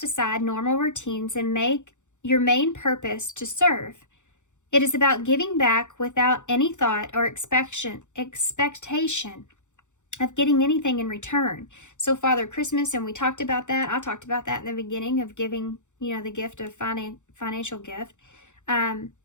aside normal routines and make your main purpose to serve. It is about giving back without any thought or expectation of getting anything in return. So Father Christmas, and we talked about that. I talked about that in the beginning of giving, you know, the gift of financial gift.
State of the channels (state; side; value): late; right; 0.85 ms